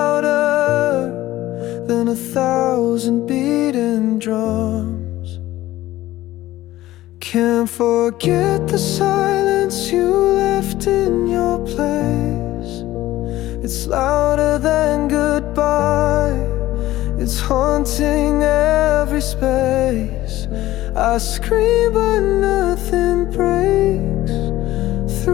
than 1,000 beating drums. Can't forget the silence you left in your place. It's louder than goodbye, it's haunting every space. I scream but nothing breaks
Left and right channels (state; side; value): quieter; right; 15.8 dB